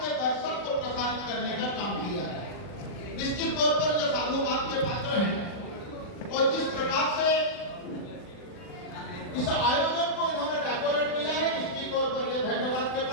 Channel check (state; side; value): late; right; 40 ms